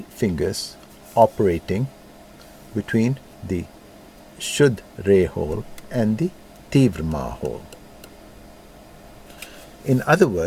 fingers operating between the Shuddh Re hole and the Tivrama hole. In other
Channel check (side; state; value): both; identical; correlation 1.00